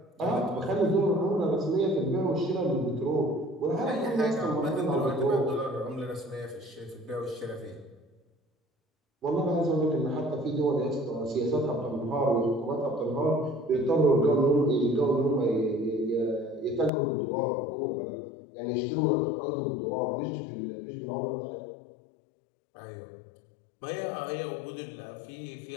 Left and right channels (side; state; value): right; drops out; at 16.9 s